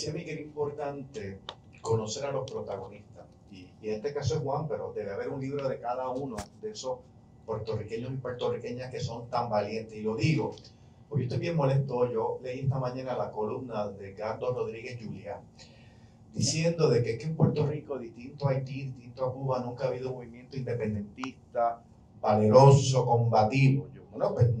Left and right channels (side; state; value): both; identical; correlation 1.00